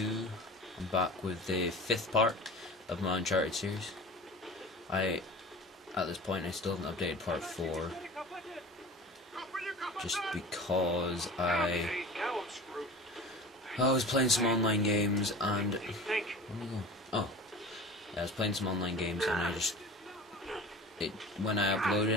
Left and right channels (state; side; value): normal; both; correlation 0.37